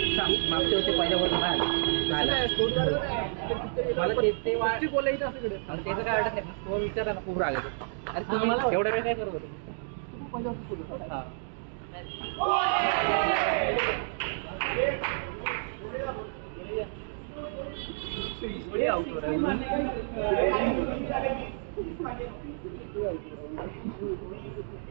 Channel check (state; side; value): silent; left; digital silence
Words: वर्षी पहिल्या वर्ष बोलायचं असं त्याचं काय वाटत नाही स्कोर विचारला ना खूप राग येतो अरे तुम्ही एवढा वेळ काय करत होते